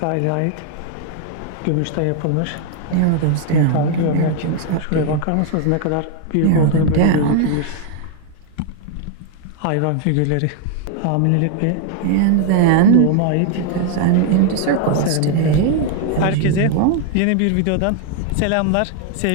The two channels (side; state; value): both; different; correlation 0.00